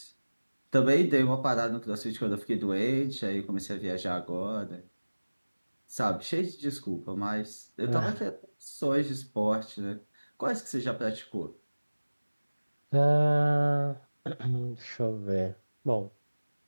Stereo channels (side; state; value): both; inverted; correlation -1.00